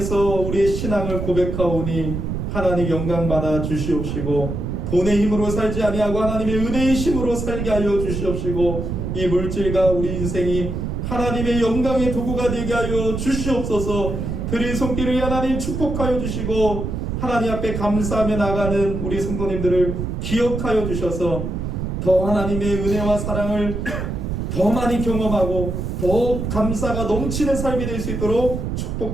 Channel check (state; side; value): noise; right; rumble, 3 dB below the sound